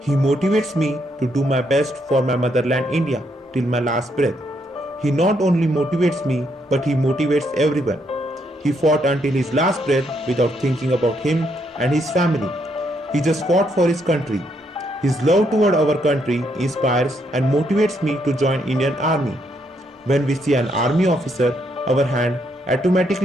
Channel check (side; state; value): both; normal; correlation 0.75